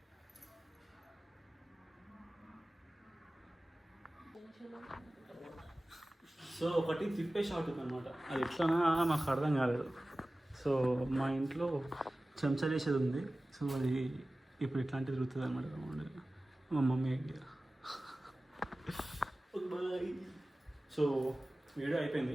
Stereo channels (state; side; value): normal; both; correlation 0.97